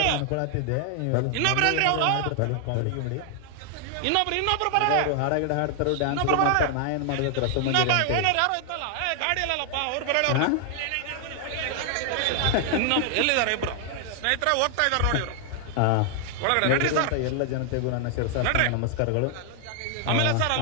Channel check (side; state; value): both; different; correlation 0.00